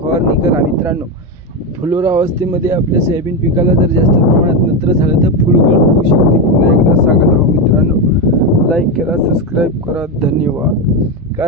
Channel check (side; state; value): both; normal; correlation 0.11